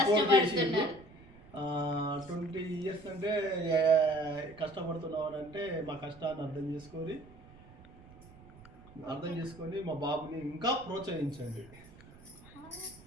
20 years అంటే కష్టపడుతున్నావు అంటే మా కష్టాన్ని అర్థం చేసుకొని మా బాబుని ఇంకా ప్రోత్సహించండి.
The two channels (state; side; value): noise; right; rumble, 21 dB below the sound